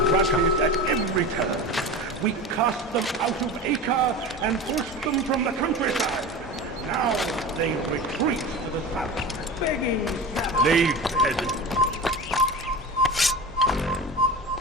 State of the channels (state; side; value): normal; both; correlation 0.30